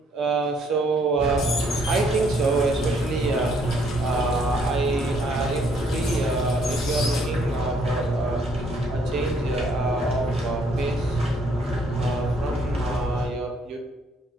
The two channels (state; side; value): normal; both; correlation 0.67